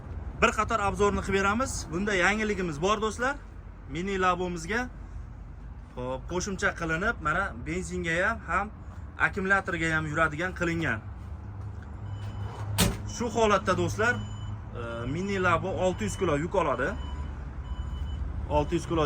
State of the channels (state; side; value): identical; both; correlation 1.00